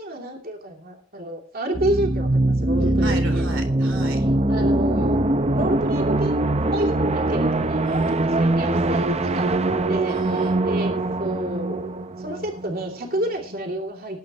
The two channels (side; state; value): both; normal; correlation 0.65